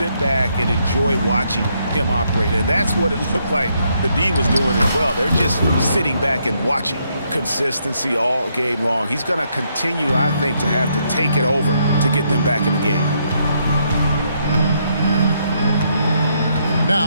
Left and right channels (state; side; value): inverted; both; correlation -0.75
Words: back and enjoy watching him operate. And that's what it looked like the D was doing as well. They're just sitting back and watching. Consistency all game long. He's going to continue, I think, to have to take it over to get them back in the game.